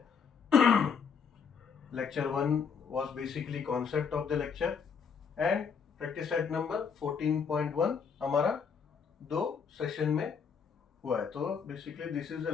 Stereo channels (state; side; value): quieter; right; 6.3 dB